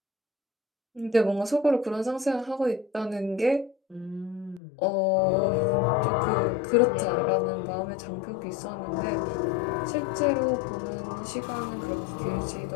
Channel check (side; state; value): right; drops out; at 4.6 s